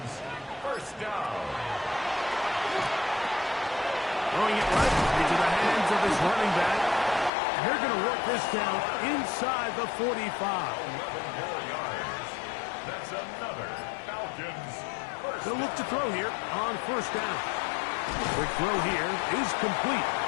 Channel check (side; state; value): right; drops out; at 7.3 s